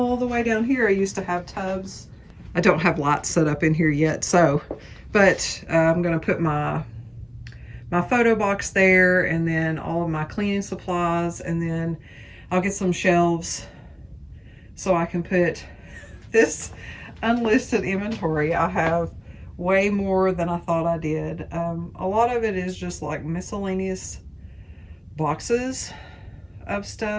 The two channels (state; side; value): identical; both; correlation 1.00